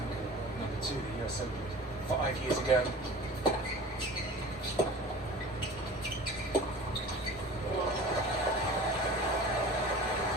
Number 2, the US Open 5 years ago.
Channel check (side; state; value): both; normal; correlation 0.40